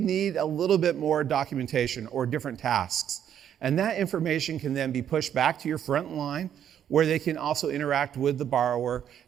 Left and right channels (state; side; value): quieter; left; 9.6 dB